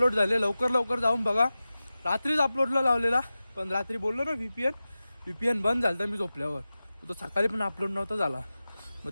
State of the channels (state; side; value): inverted; both; correlation -0.95